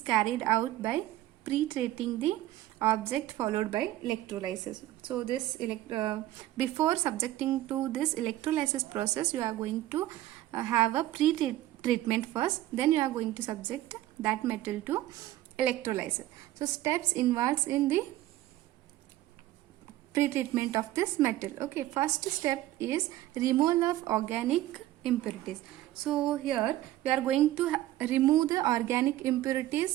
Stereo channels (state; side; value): quieter; left; 15.1 dB